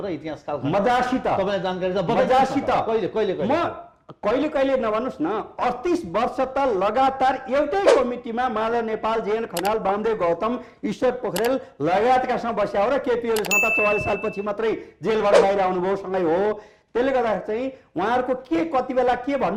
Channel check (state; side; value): identical; both; correlation 1.00